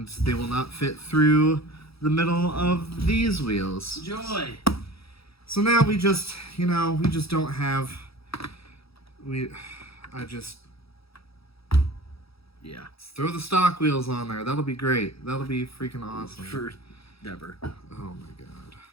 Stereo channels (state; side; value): late; right; 0.77 ms